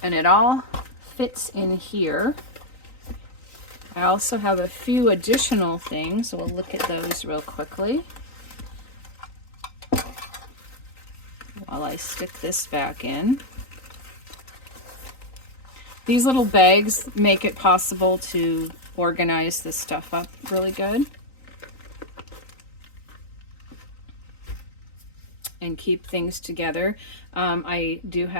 and it all fits in here. I also have a few additional things, so we'll look at those real quickly while I stick this back in. These little bags make it possible to organize this stuff up really good and keep things together. I do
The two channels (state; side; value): late; right; 3.9 ms